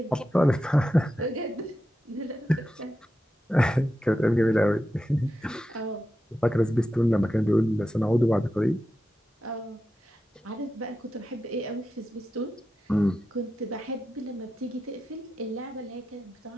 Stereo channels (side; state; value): both; normal; correlation 0.90